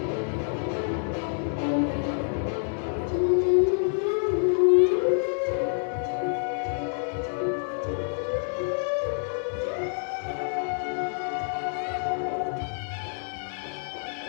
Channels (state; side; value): silent; right; 58 dB below the other